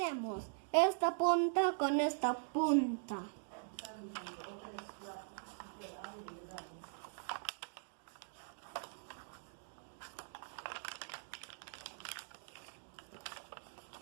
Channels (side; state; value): left; silent; digital silence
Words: Esta punta con esta punta.